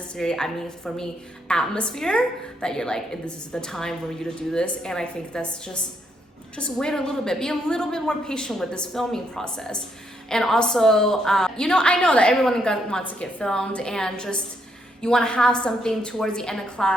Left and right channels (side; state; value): both; normal; correlation 0.75